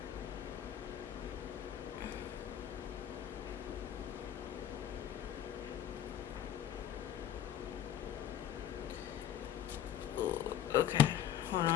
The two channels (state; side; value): quieter; right; 10.5 dB